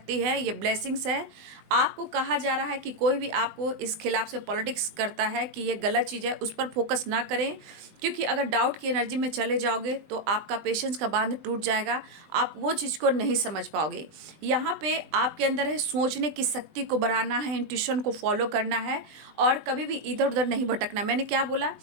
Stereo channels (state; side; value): late; left; 20 ms